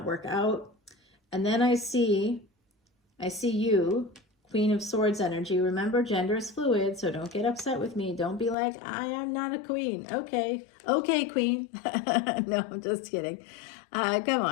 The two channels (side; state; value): right; drops out; at 8.6 s